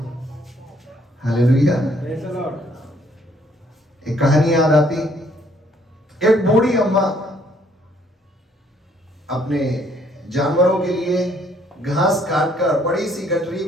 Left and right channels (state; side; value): normal; both; correlation 0.65